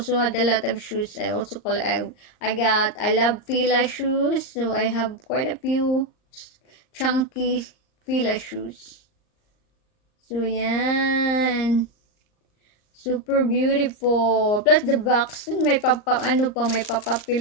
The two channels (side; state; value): right; late; 38 ms